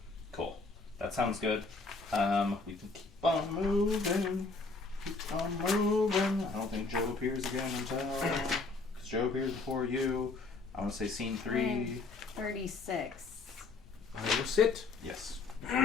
Cool. That sounds good. We can keep on moving. Keep on moving. I don't think Joe appears again until... Because Joe appears before you. I want to say scene 3. 36. I will sit. Yes.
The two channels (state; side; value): quieter; right; 4.0 dB